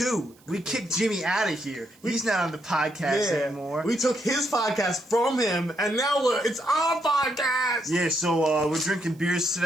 We kicked Jimmy out of here. He's not on the podcast anymore. We took his podcast from him, and now it's our podcast. Yeah, so we're drinking beers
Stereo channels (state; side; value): noise; right; hiss, 30 dB below the sound